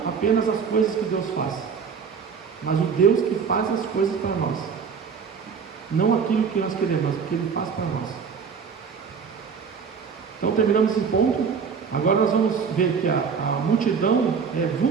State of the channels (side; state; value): left; quieter; 6.2 dB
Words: apenas as coisas que Deus faz, mas o Deus que faz as coisas para nós, não aquilo que nós queremos, mas o que Ele faz para nós. Então terminamos esse ponto. Agora nós vamos ver que a multidão é